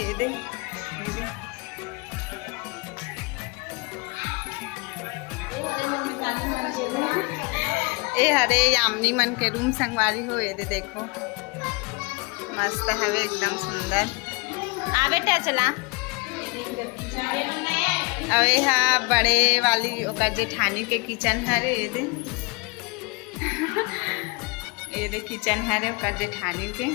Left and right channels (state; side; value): quieter; right; 28.4 dB